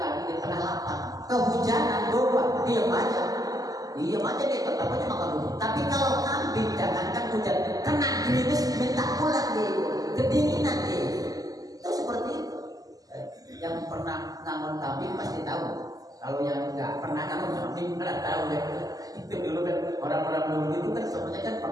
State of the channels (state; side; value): late; left; 0.17 ms